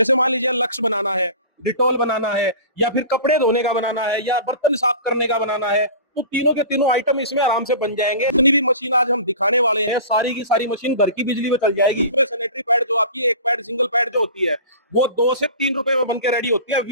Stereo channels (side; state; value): both; inverted; correlation -0.38